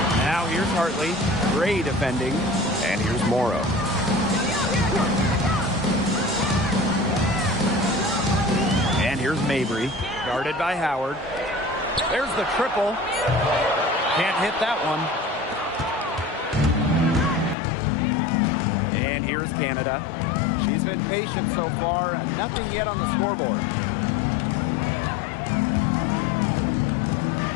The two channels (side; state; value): right; drops out; at 17.6 s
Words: Now here's Hartley. Gray defending. And here's Morrow. And here's Mabry. Guarded by Howard. There's the triple. Can't hit that one. And here's Canada. She's been patient so far. Nothing yet on the scoreboard.